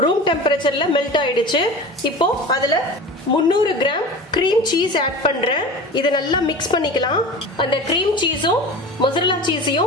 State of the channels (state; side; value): normal; both; correlation 0.34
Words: ரூம் டெம்பரேச்சர்ல மெல்ட் ஆயிடுச்சு. இப்போ அதுல 300 கிராம் கிரீம் சீஸ் ஆட் பண்றேன். இதை நல்லா மிக்ஸ் பண்ணிக்கலாம். அந்த கிரீம் சீஸும் மொசரல்லா